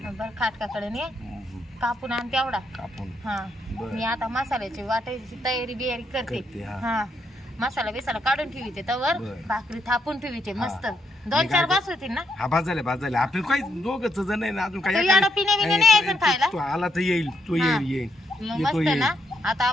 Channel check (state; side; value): normal; both; correlation 0.77